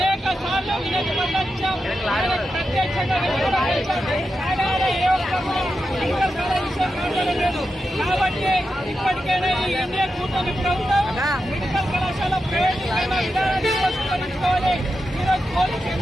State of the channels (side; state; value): both; normal; correlation 0.89